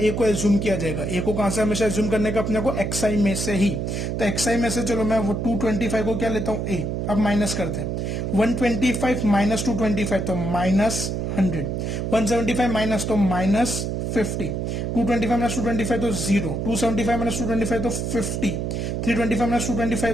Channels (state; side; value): noise; right; hum, 2 dB below the sound